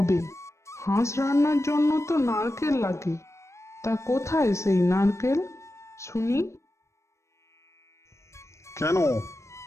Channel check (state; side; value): late; right; 0.14 ms